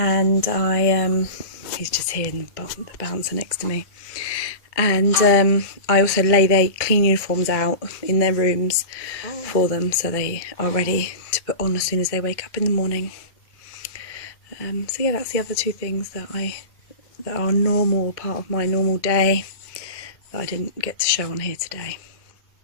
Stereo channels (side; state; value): right; late; 1.9 ms